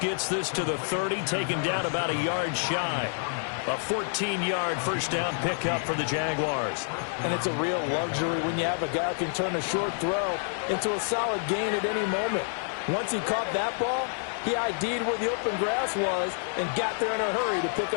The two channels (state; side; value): silent; right; digital silence